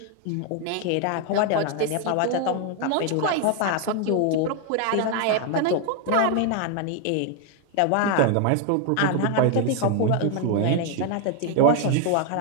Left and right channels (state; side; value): different; both; correlation 0.01